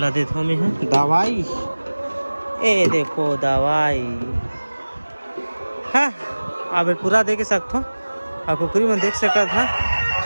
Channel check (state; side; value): inverted; both; correlation -1.00